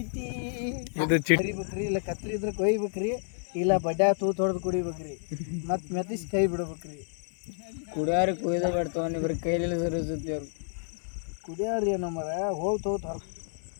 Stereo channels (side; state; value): right; silent; 58 dB below the other